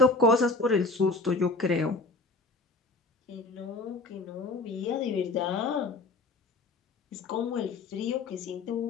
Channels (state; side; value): quieter; right; 3.3 dB